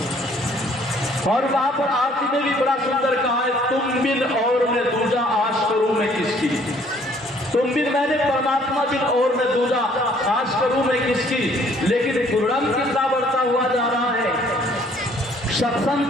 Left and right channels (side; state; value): both; normal; correlation 0.60